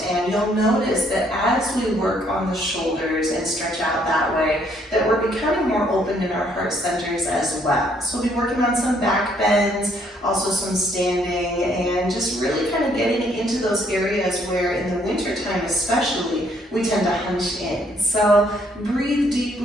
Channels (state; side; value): normal; both; correlation 0.67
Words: And you'll notice that as we work on the shoulders and stretch out that way, that we're becoming more open in our heart centers as well. So we'll be working on some back bends, also some standing, and just really kind of getting into those areas where in the winter time especially, we tend to hunch in. So breathe